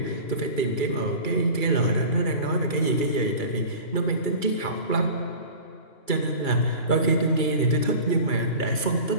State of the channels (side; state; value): right; late; 2.3 ms